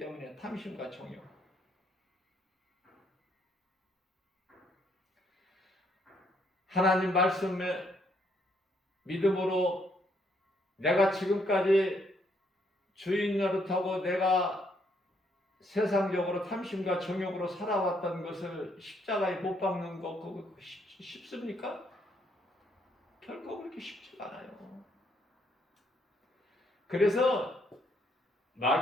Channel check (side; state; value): both; normal; correlation 0.71